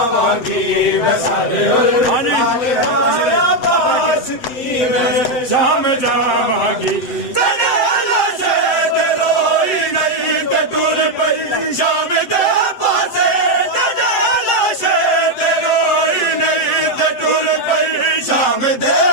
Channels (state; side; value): late; right; 7.9 ms